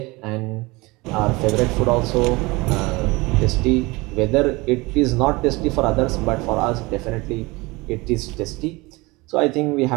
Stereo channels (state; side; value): quieter; left; 23.3 dB